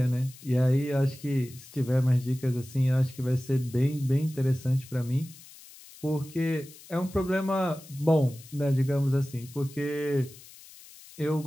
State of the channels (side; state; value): left; noise; hiss, 20 dB below the sound